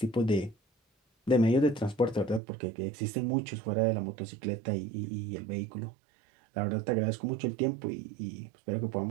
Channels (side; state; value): left; drops out; at 2.4 s